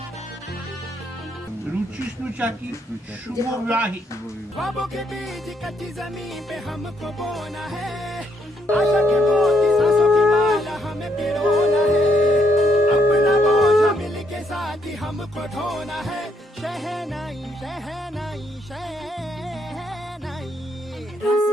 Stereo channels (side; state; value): both; normal; correlation 0.74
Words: रुचि स्नुचा की शुभ विवाही। ख्वाबों के बीज कच्ची जमीन पे हमको बोना है, आशा के मोती सांसों की माला हमें पिरोना है। अपना बोझ मिल के साथ ही हमको ढोना है, शहनाई शहनाई शहनाई। रस